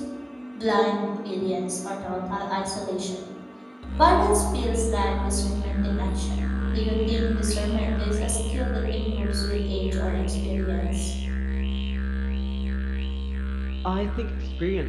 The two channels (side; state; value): both; identical; correlation 1.00